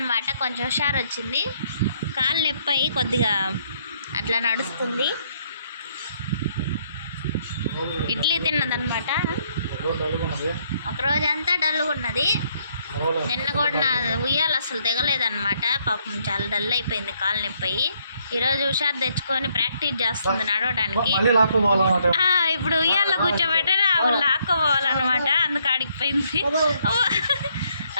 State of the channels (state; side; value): inverted; both; correlation -0.71